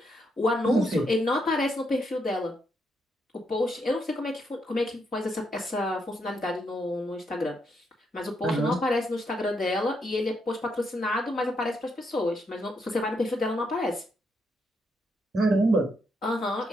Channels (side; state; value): both; normal; correlation 0.78